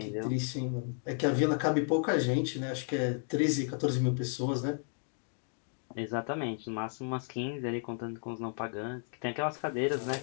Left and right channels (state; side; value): silent; right; 56 dB below the other